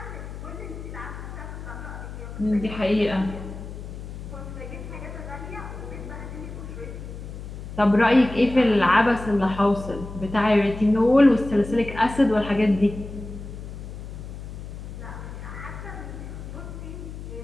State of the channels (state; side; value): noise; left; hum, 10 dB below the sound